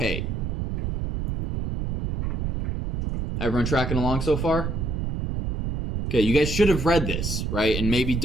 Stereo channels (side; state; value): right; noise; rumble, 2 dB below the sound